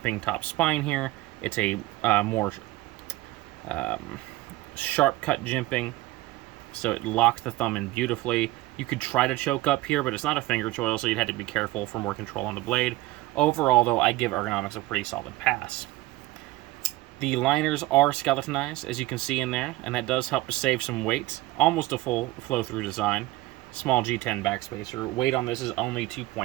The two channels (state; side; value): quieter; left; 18.2 dB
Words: top spine here. It's a more sharp cut jimping, so it locks the thumb in beautifully. You could try to choke up here, but it's not a finger choil, so you'd have to be careful for more control on the blade. Overall, though, I give Ergonomics a pretty solid pass. The liners are skeletonized, as you can see in there, and that does help to save some weight. Almost a full flow-through design. Small G10 backspacer. Weight on this is only